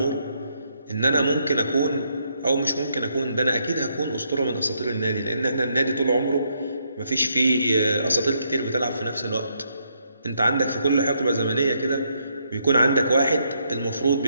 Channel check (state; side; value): inverted; both; correlation -0.76